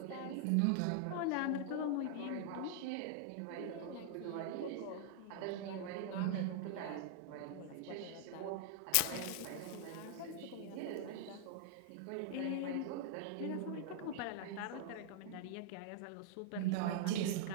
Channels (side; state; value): both; different; correlation -0.01